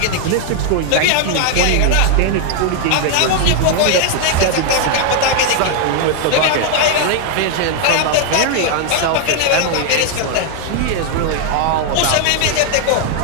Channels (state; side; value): different; both; correlation 0.00